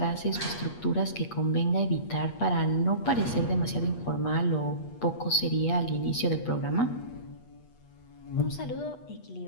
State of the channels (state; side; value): late; right; 8.3 ms